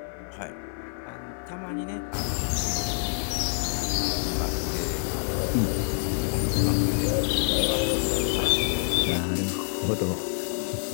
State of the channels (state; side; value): silent; right; 60 dB below the other